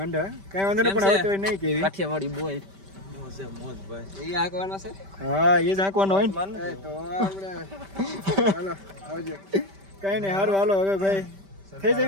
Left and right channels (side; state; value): left; late; 5.1 ms